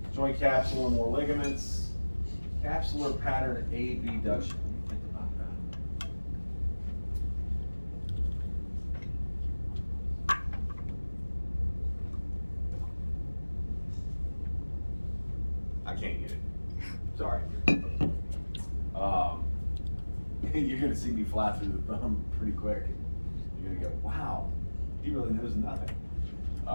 joint capsule and more ligaments. Capsular pattern abduction. Think about that. I can't get it. Sorry. You're gonna see me fly through the thumb pretty quick. You're gonna go, wow, he really knows nothing.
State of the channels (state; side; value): inverted; both; correlation -1.00